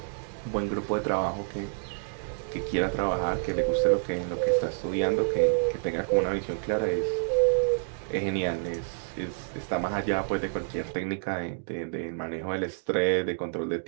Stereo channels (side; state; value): left; silent; digital silence